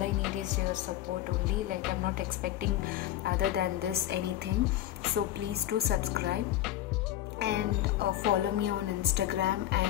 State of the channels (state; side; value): quieter; right; 13.2 dB